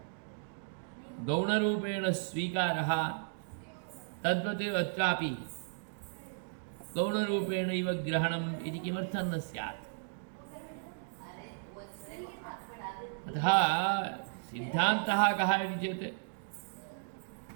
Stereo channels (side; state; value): left; silent; digital silence